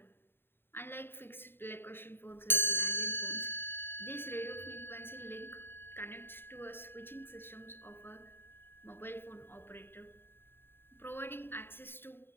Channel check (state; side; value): late; right; 0.11 ms